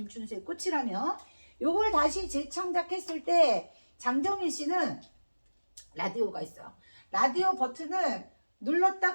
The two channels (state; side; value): inverted; both; correlation -1.00